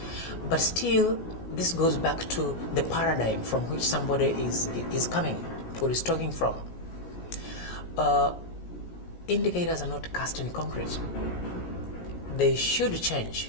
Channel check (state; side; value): late; right; 17 ms